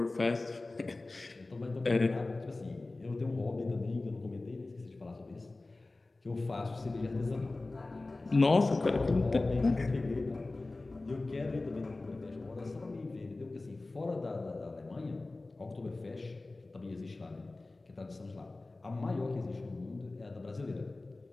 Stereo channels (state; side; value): quieter; right; 3.2 dB